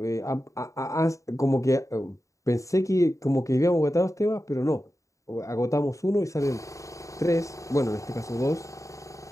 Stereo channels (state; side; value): late; right; 0.16 ms